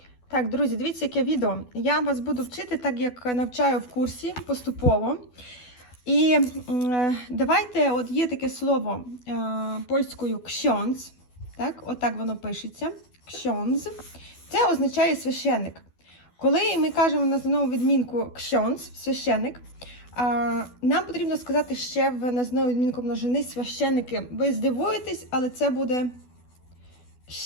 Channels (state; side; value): late; right; 12 ms